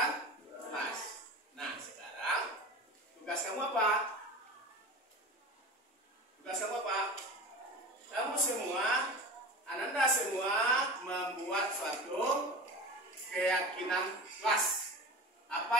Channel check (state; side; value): normal; both; correlation 0.32